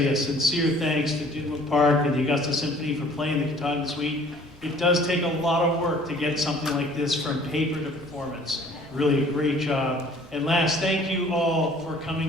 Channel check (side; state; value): both; normal; correlation 0.54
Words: a sincere thanks to Dinwood Park and the Augusta Symphony for playing the Katahdin Suite. It does take a lot of work to get something like this from paper to performance. Really a great job. And last, thank you all for